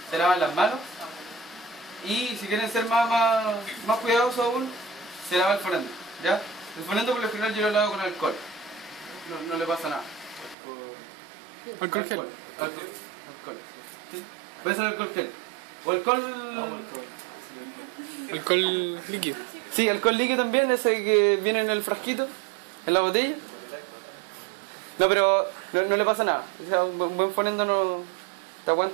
se lavan las manos y si quieren ser más cuidadosos aún, se lava el fonendo. ¿Ya? El fonendo por lo general yo lo lavo con alcohol, no le pasa nada. Alcohol gel. Alcohol. ¿Sí? Puede ser alcohol gel. O alcohol... Alcohol líquido. Sí, alcohol líquido también, ese que viene en el frasquito, en la botella. No, pero no le pasa nada. O sea, un buen fonendo no te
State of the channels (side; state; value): left; drops out; at 10.6 s